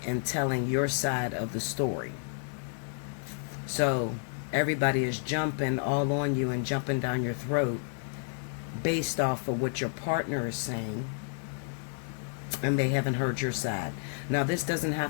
and telling your side of the story. So everybody is jumping all on you and jumping down your throat based off of what your partner is saying, and they haven't heard your side. Now, this doesn't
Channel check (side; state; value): right; silent; 57 dB below the other